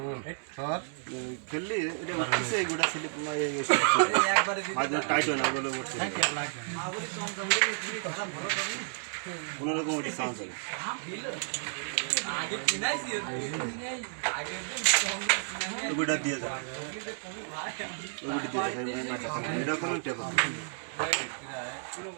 স্যার খেললি এটা উঠছে এই গোটা স্লিপ মাঝে টাইট হয় না বলে উঠছে কোনোরকম ওটি চান্স হয় ওটা দিয়ে যাবে ওটি দিয়ে যাবে এটা কোনো টেপল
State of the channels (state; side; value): silent; left; digital silence